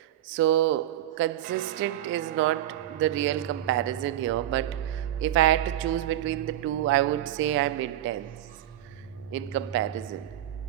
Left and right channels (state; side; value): quieter; left; 12.8 dB